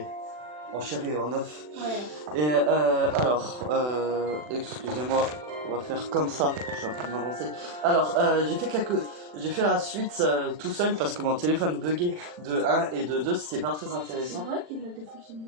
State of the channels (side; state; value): left; late; 40 ms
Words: en chair et en œuf. Ouais. Et excusez-moi, on va faire comme ça, je suis en train de m'avancer. Alors, j'ai fait la suite tout seul parce que mon téléphone buguait de 1 et de 2, c'était pas très C'est intéressant. vrai qu'il a des